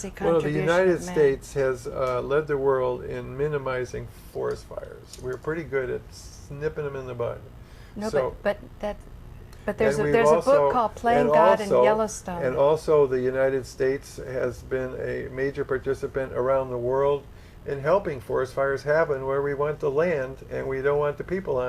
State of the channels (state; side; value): identical; both; correlation 1.00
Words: Well, contribution the United of man. States has led the world in minimizing forest fires. We're pretty good at snipping them in the bud. No, So- but there's and a we've book also- called Playing and God in also- Yellowstone. And also the United States has been a major participant around the world in helping forest fires happen where we want the land and we don't want the people